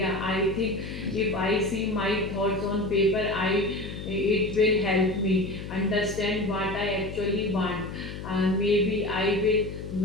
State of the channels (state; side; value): noise; left; hum, 9 dB below the sound